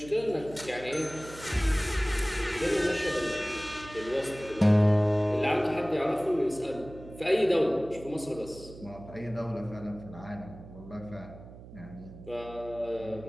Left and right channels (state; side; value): noise; right; hum, 16 dB below the sound